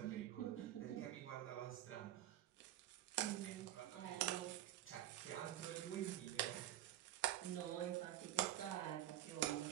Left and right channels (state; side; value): quieter; left; 13.3 dB